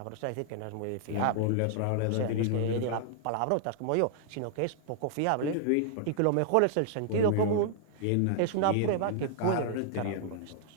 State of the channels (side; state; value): both; different; correlation -0.01